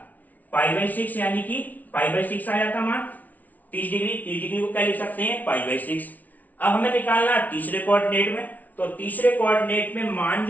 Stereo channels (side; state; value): right; late; 0.076 ms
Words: π/6, यानी कि π/6 आ जाता मान। 30 डिग्री को क्या लिख सकते हैं, π/6। अब हमें निकालना तीसरे कोऑर्डिनेट में, तो तीसरे कोऑर्डिनेट में मान